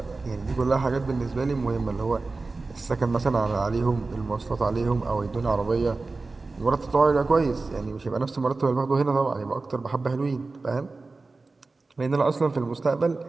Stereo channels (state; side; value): quieter; left; 3.7 dB